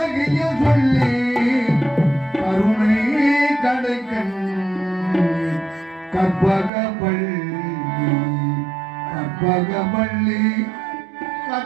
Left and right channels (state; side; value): drops out; left; at 6.7 s